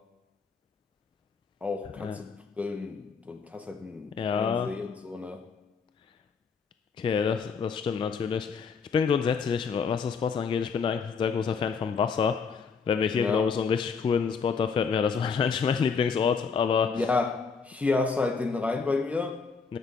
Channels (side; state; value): right; quieter; 5.5 dB